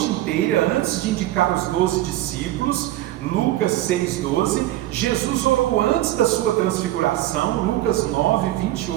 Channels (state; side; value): quieter; left; 15.0 dB